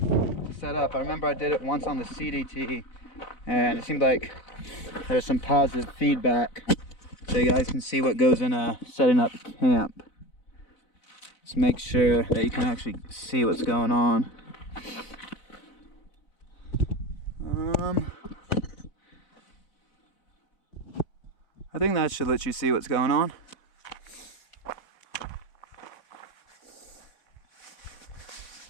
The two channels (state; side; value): late; right; 4.0 ms